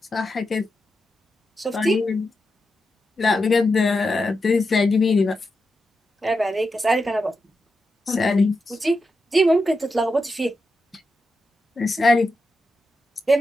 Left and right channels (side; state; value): both; normal; correlation 0.88